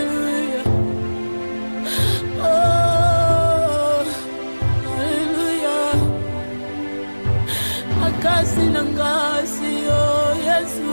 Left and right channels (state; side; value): inverted; both; correlation -1.00